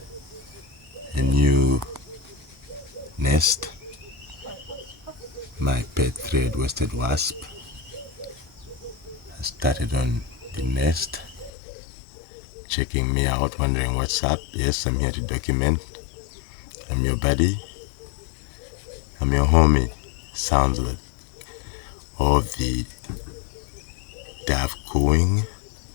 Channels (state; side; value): drops out; right; at 11.5 s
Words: a new nest. My pet thread-waisted wasp has started on the nest, checking me out, wondering what's up. Yes, I'm here to document. I'm your buddy. I'm your homie. Sounds like all the dove cooing